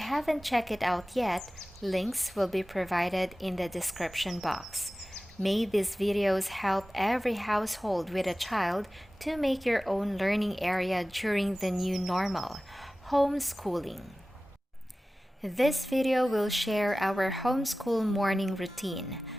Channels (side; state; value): both; normal; correlation 0.97